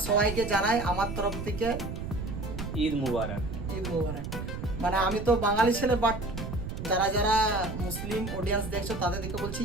সবাইকে জানাই আমার তরফ থেকে ঈদ মুবারক। ঈদ মুবারক। মানে আমি তো বাঙালি ছেলে, বাট যারা যারা মুসলিম অডিয়েন্স দেখছো তাদের দিকে বলছি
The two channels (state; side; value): noise; right; rumble, 7 dB below the sound